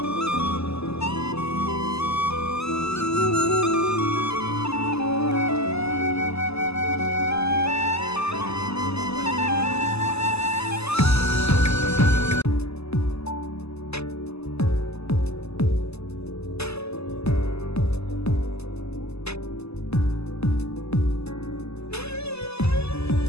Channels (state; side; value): late; right; 0.79 ms